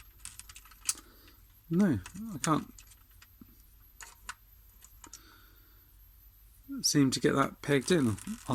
no, I can't seem to get that pegged in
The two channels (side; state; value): both; identical; correlation 1.00